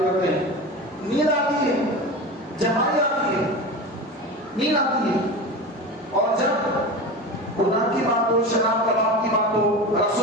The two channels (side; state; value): both; normal; correlation 0.28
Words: ہیں، نیند آتی ہے، جمائی آتی ہے، نیند آتی ہے، اور جب گناہ کی بات ہو، شراب کباب کی بات ہو، رقص